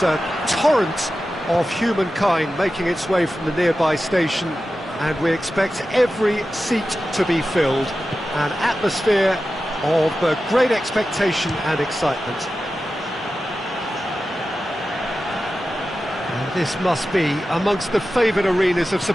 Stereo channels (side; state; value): both; normal; correlation 0.93